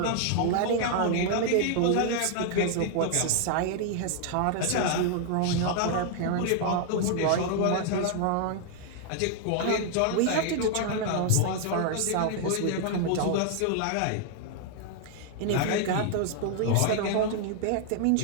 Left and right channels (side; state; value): both; different; correlation 0.00